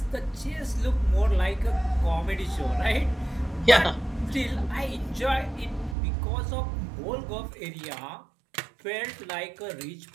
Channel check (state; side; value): drops out; left; at 6.0 s